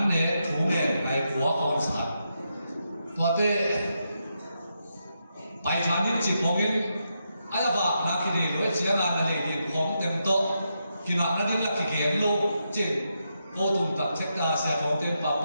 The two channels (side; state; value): both; inverted; correlation -0.84